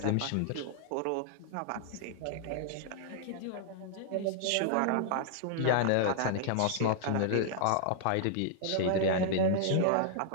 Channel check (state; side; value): different; both; correlation -0.01